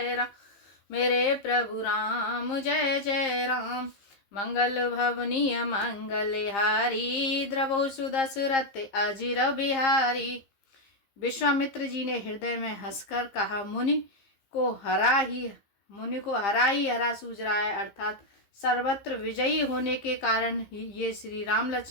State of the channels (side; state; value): right; late; 15 ms